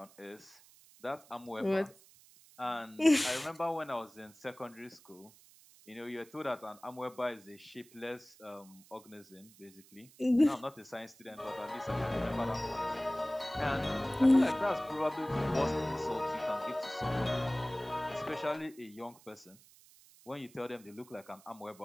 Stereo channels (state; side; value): noise; right; hiss, 24 dB below the sound